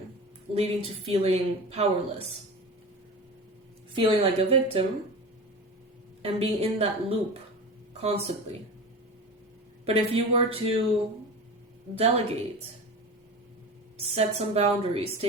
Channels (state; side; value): normal; both; correlation 0.30